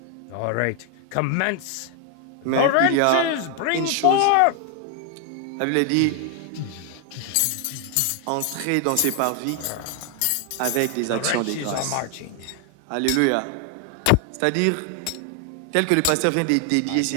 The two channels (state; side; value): different; both; correlation 0.00